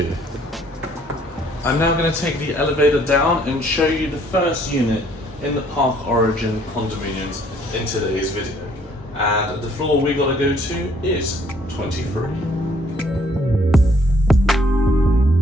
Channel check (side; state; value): both; normal; correlation 0.63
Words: I'm now going to take the elevator down and show you the first unit in the Park Origin condominiums in today's video. And the floor we got to go to is 23.